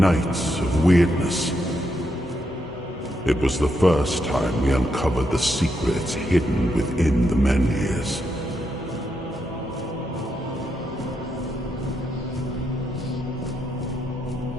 of weirdness. It was the first time we uncovered the secrets hidden within the Menhirs.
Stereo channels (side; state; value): both; normal; correlation 0.81